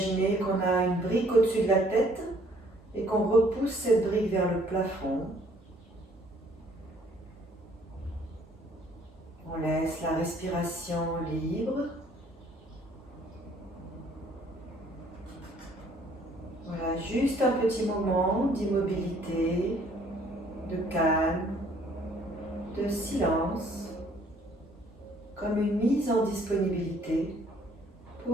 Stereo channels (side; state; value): both; normal; correlation 0.61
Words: qu'on a une brique au-dessus de la tête et qu'on repousse cette brique vers le plafond. On laisse la respiration libre. Voilà, juste un petit moment d'immobilité, de calme, de silence, comme une mise en disponibilité